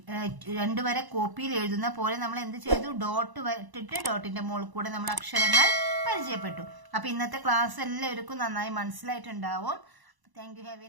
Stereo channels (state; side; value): late; left; 1.0 ms